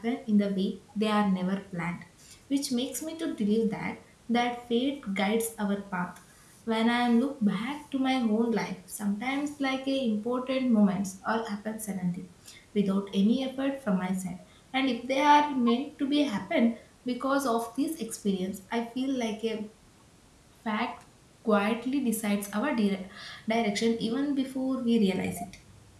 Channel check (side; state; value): both; identical; correlation 1.00